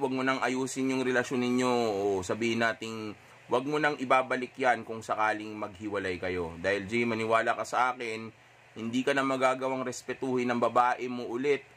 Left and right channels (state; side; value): identical; both; correlation 1.00